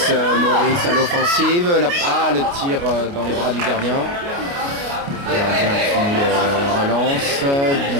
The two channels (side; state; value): left; late; 29 ms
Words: à l'offensive. Le tir dans les bras du gardien. Le gardien qui relance.